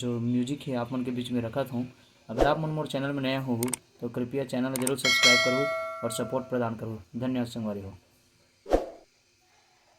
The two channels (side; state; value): both; identical; correlation 1.00